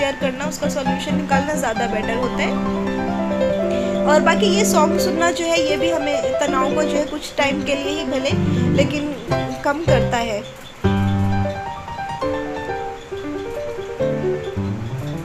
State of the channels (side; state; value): both; identical; correlation 1.00